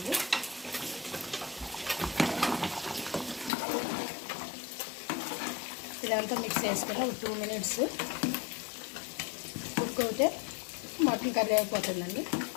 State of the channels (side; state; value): right; drops out; at 3.5 s